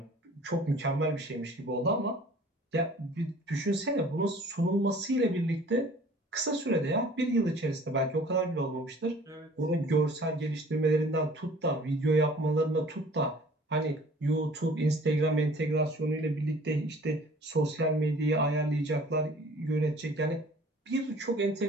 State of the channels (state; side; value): normal; both; correlation 0.50